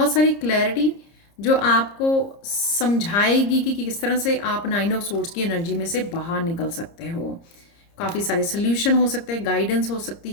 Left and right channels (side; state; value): right; late; 30 ms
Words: सारी क्लैरिटी जो आपको समझाएगी कि किस तरह से आप 9 ऑफ सोर्ड्स की एनर्जी में से बाहर निकल सकते हो। काफ़ी सारे सोल्यूशन हो सकते हैं, गाइडेंस हो सकती